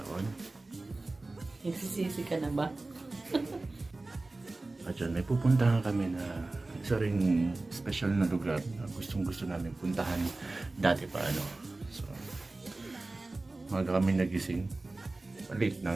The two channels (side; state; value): left; quieter; 3.1 dB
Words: Nagsisisi ka na ba? At yun, may pupuntahan kami na isa ring special na lugar na gustong gusto namin puntahan dati pa ano. So, maga kami nagising. Late na